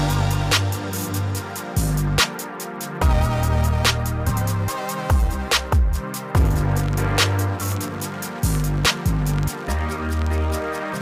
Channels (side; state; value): both; identical; correlation 1.00